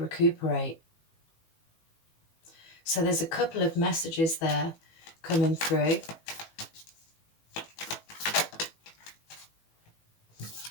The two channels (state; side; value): late; right; 18 ms